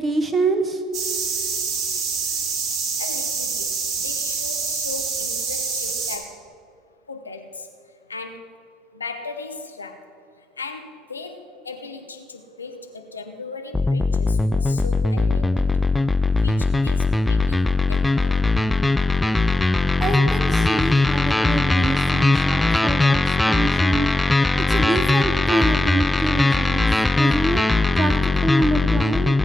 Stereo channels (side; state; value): both; normal; correlation 0.86